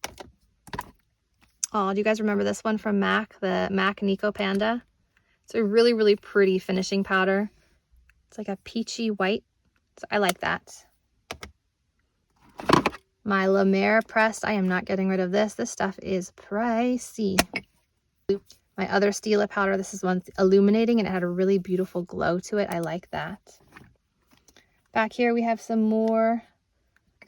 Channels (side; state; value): both; identical; correlation 1.00